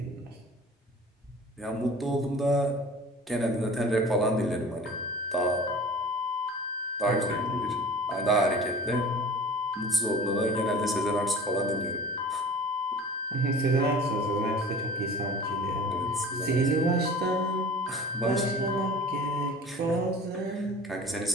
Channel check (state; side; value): normal; both; correlation 0.41